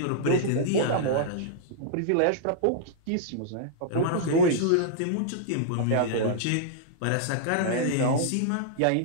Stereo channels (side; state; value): both; different; correlation -0.02